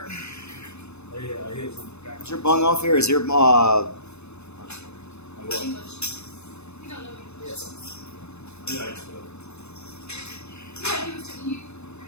Is your bung off here? Is your, English. You don't know English. Yes. Yeah, he was telling you.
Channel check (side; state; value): right; late; 0.81 ms